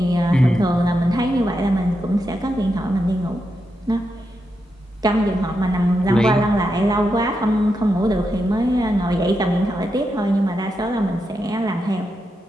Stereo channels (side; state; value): both; normal; correlation 0.85